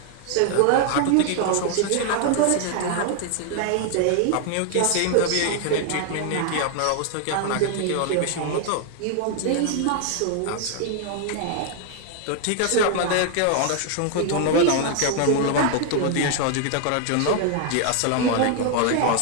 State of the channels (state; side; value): different; both; correlation 0.00